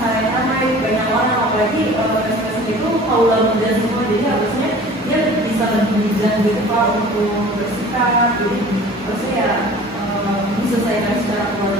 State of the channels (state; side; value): normal; both; correlation 0.44